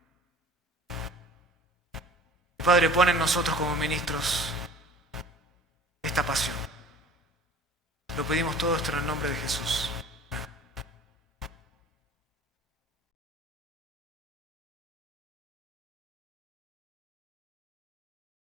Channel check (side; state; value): both; normal; correlation 0.45